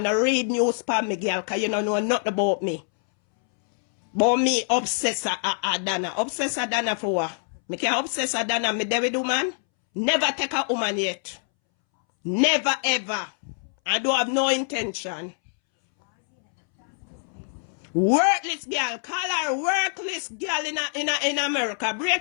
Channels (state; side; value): silent; right; 62 dB below the other